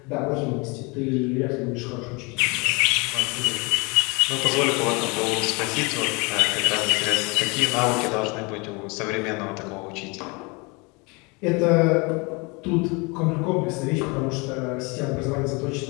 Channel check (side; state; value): right; quieter; 28.7 dB